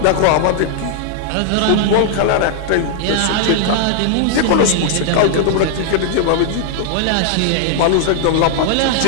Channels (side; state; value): both; different; correlation -0.01